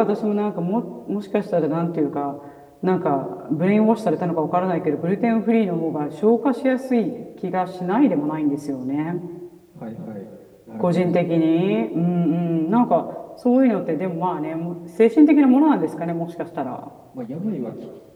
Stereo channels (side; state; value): both; identical; correlation 1.00